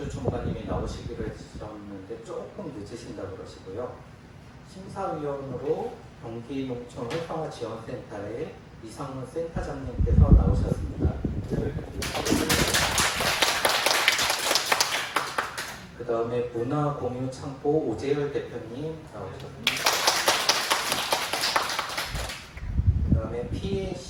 주무관님이 나오시기로 했었는데 조금 늦으신다고 그러시고요. 심사위원으로 경기농촌 활성화지원센터의 이상문 센터장님께서 나오셨습니다. 그 다음에 문화공유창고 오재열 대표님 나오셨습니다. 그 다음에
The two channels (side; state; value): both; identical; correlation 1.00